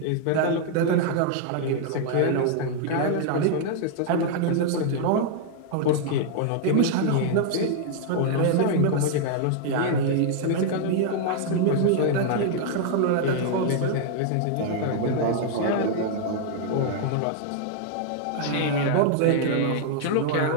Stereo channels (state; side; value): different; both; correlation 0.00